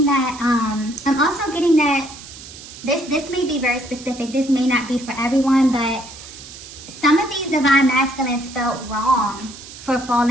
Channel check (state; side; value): noise; right; hiss, 16 dB below the sound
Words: that, this may be very specific. This may not be for everyone, but some of these divine masculines felt wrong for